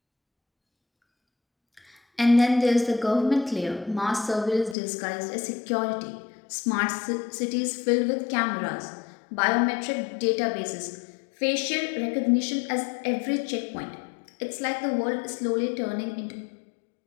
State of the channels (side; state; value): right; drops out; at 4.8 s